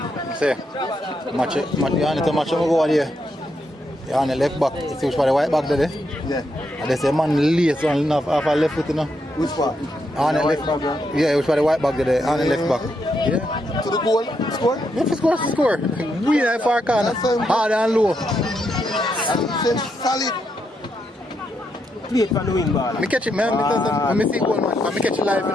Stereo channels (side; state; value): both; normal; correlation 0.80